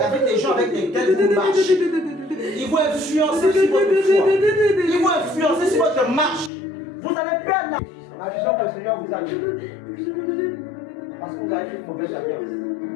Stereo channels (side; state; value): right; drops out; at 6.5 s